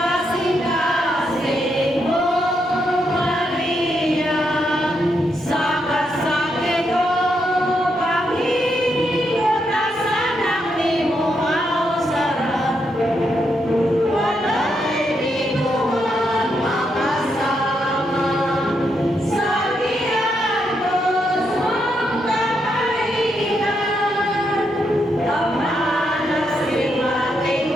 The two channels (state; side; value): normal; both; correlation 0.80